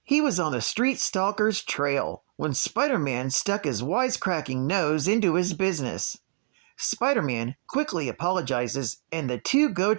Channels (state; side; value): silent; left; 60 dB below the other